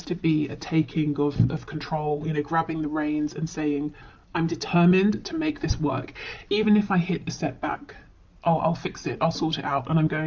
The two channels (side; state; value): both; identical; correlation 1.00